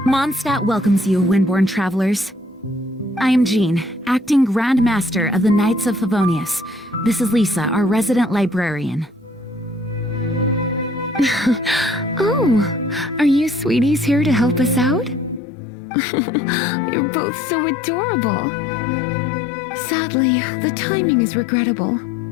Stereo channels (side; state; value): right; drops out; at 15.4 s